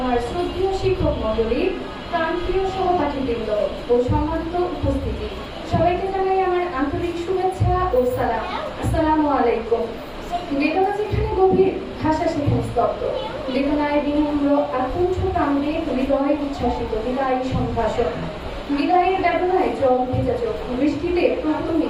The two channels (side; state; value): both; identical; correlation 1.00